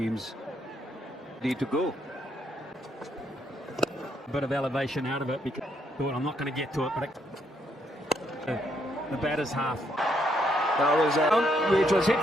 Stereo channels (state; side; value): normal; both; correlation 0.74